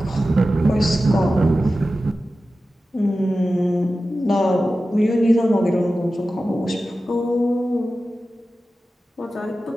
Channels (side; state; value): both; normal; correlation 0.94